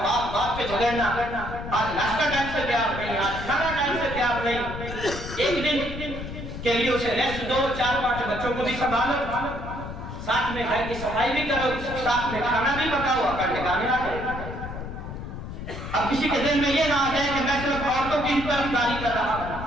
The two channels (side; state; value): left; noise; rumble, 8 dB below the sound